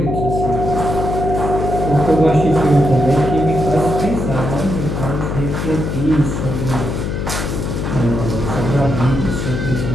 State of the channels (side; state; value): left; noise; hum, 2 dB below the sound